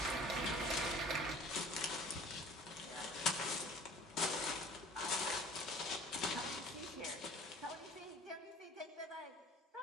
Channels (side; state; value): both; normal; correlation 0.47